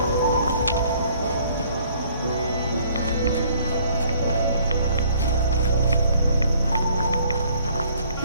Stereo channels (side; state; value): both; inverted; correlation -0.60